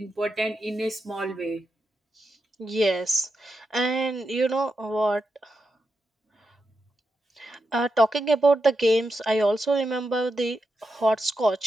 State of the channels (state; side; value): normal; both; correlation 0.87